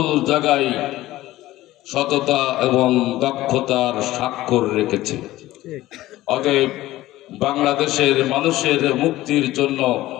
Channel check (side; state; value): right; quieter; 16.2 dB